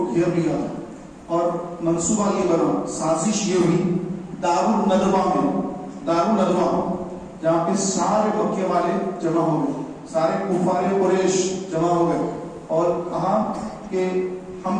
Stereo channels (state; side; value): identical; both; correlation 1.00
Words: گھیر لیا تھا, اور منصوبہ یہ بنا, سازش یہ ہوئی دار الندوہ میں, دار الندوہ جہاں پہ سارے مکے والے جمع ہو گئے, سارے کفار قریش جمع ہو گئے, اور کہا کہ ہم